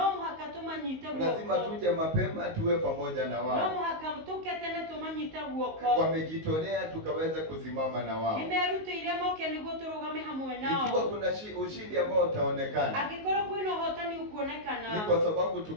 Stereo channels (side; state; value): left; late; 19 ms